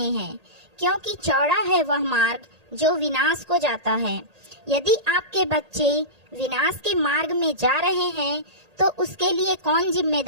हैं, क्योंकि चौड़ा है वह मार्ग जो विनाश को जाता है। यदि आपके बच्चे विनाश के मार्ग में जा रहे हैं तो उसके लिए कौन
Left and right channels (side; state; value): left; late; 1.8 ms